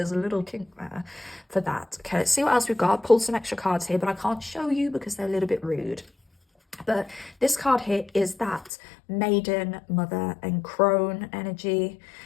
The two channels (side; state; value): right; drops out; at 8.7 s